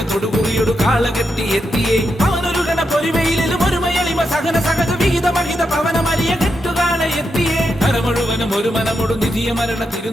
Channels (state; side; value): normal; both; correlation 0.84